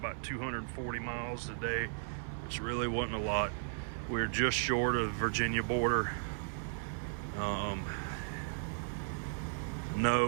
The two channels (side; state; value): left; silent; 54 dB below the other